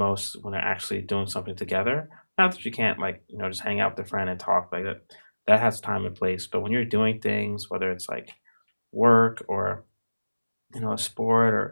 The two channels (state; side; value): inverted; both; correlation -1.00